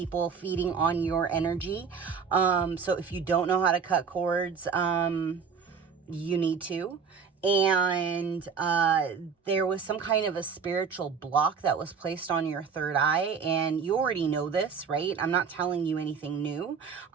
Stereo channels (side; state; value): left; quieter; 6.1 dB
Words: feeding on your energy. So if you don't know how to cut cords, you need to. And there was some kind of a spiritual block that was placed on your third eye, and you already know this, right? I'm not telling you anything new.